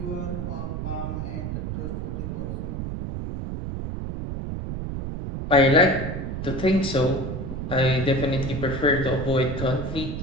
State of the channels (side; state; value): right; noise; rumble, 4 dB below the sound